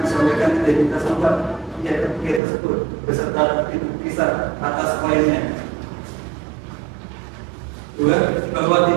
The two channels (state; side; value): drops out; left; at 2.4 s